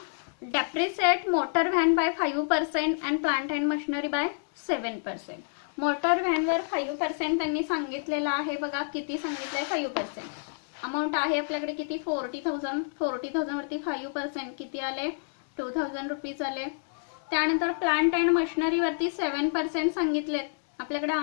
Depreciate motor van by 5% and plant and machinery by 7%. Motor व्हॅनवर 5% त्यांनी सांगितलेलं आहे बघा. किती सांगितलंय, 5%. अमाऊंट आहे आपल्याकडे किती, 40,000. 40,000 वरती 5% किती आले, ₹2,000 आले. त्यानंतर प्लांट अँड मशिनरी वरती 7% सांगितलेत. आपल्याकडे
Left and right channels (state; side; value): silent; right; digital silence